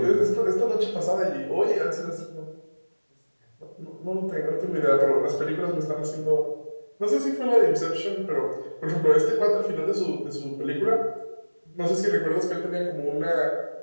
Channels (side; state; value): both; inverted; correlation -1.00